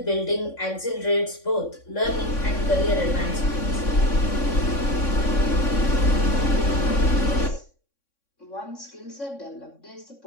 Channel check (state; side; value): late; right; 3.6 ms